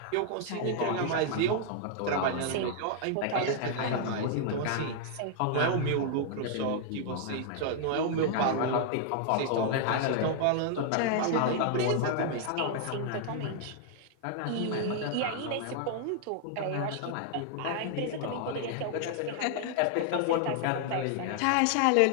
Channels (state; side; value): different; both; correlation 0.00